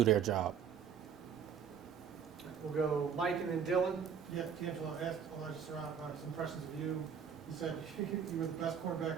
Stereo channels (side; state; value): left; quieter; 7.4 dB